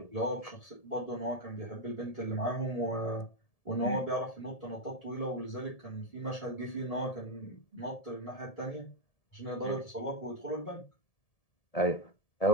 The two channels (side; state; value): right; late; 1.7 ms